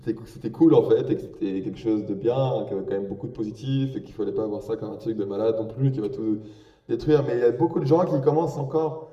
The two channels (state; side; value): identical; both; correlation 1.00